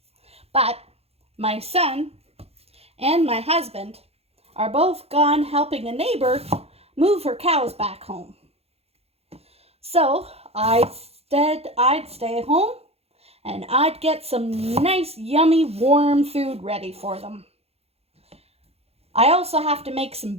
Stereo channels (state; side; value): late; left; 0.29 ms